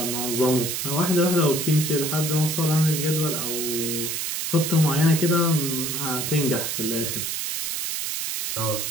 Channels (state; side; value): noise; right; hiss, 2 dB below the sound